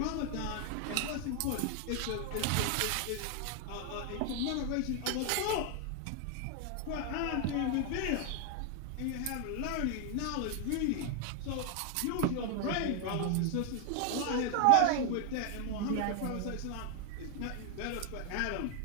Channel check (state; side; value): different; both; correlation 0.00